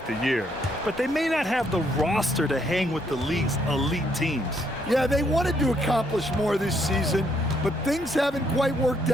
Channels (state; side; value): normal; both; correlation 0.71